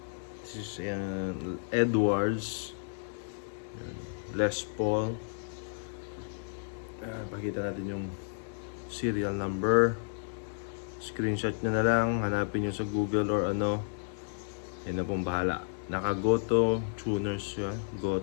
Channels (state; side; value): silent; right; digital silence